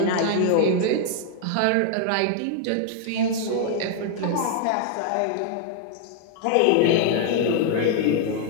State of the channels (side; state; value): both; different; correlation 0.00